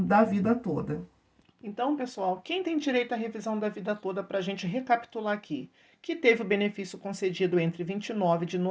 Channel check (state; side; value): identical; both; correlation 1.00